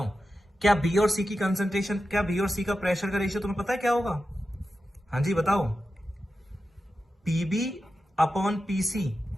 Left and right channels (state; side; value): normal; both; correlation 0.91